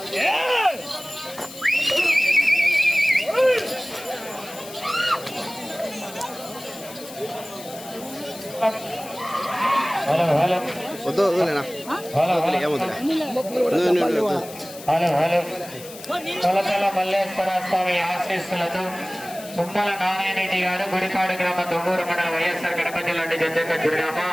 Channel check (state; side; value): noise; left; hiss, 16 dB below the sound